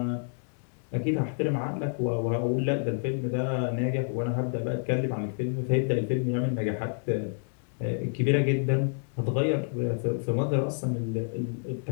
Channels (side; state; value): right; silent; digital silence